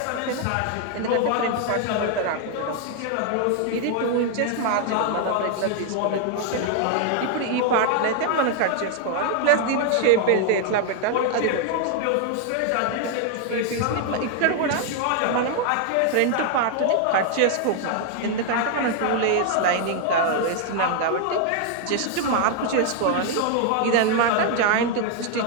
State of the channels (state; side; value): different; both; correlation 0.00